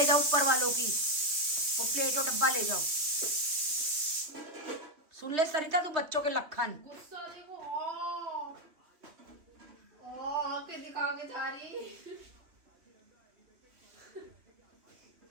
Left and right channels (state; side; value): late; left; 2.8 ms